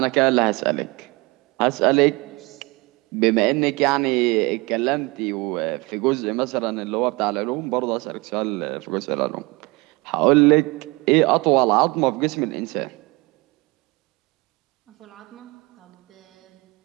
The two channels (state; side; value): quieter; left; 25.1 dB